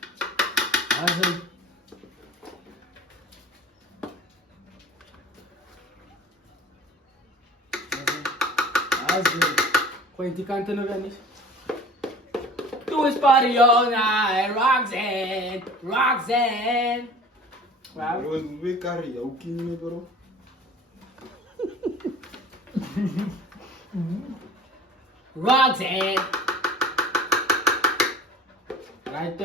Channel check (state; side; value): normal; both; correlation 0.44